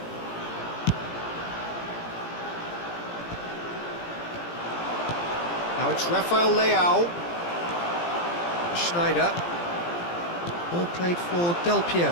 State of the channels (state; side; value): late; right; 17 ms